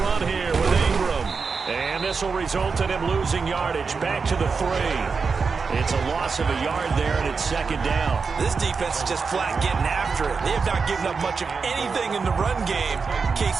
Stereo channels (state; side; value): quieter; left; 5.0 dB